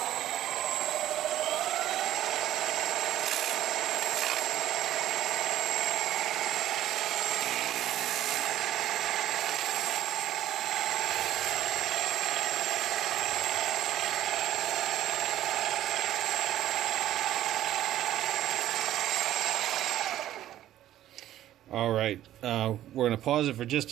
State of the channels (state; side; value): quieter; left; 12.9 dB